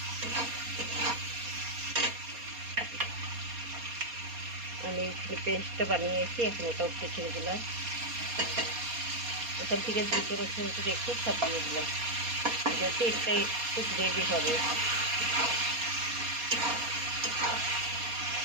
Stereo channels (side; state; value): left; late; 4.2 ms